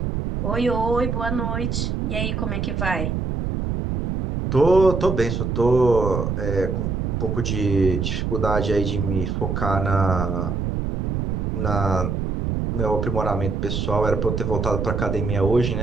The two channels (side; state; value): right; noise; rumble, 1 dB below the sound